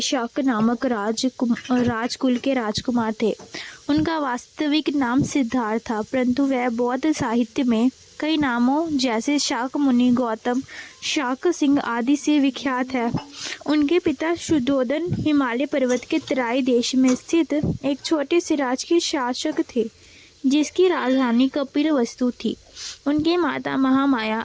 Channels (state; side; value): identical; both; correlation 1.00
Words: शाक नामक राजकुल के राजकुमार थे। उनका वास्तविक नाम सिद्धार्थ था, परंतु वह बौद्ध साहित्य में कई नामों जैसे शाक मुनि, गौतम, शाक सिंह आदि से विख्यात है। उनके पिता शुद्धोधन हिमालय पर्वत के तराई देश में स्थित एक छोटे से राज्य के शासक थे, जिसकी राजधानी कपिलवस्तु थी। उनकी माता महामाया